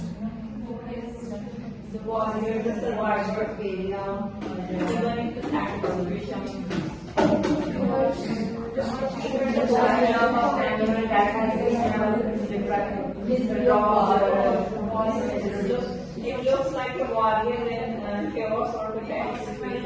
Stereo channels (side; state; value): both; identical; correlation 1.00